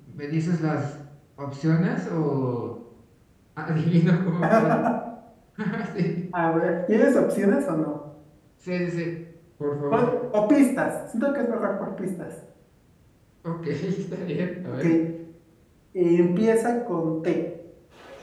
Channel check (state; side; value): identical; both; correlation 1.00